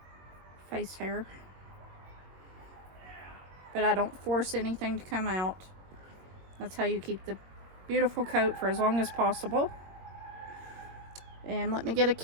face hair. But I don't force anything to come out. That's how you keep the beautiful coat for as long as possible. And let me get a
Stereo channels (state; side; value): late; left; 22 ms